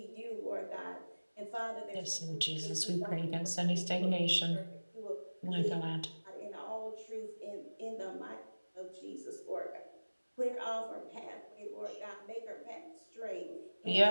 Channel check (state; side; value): inverted; both; correlation -1.00